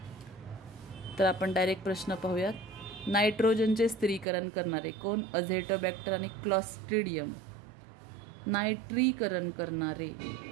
तर आपण डायरेक्ट प्रश्न पाहूयात. नायट्रोजनचे स्थिरीकरण करणारे कोण? अझेटोबॅक्टर आणि क्लॉस्ट्रिडियम. नायट्रीकरण करणारे,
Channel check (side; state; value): left; drops out; at 4.2 s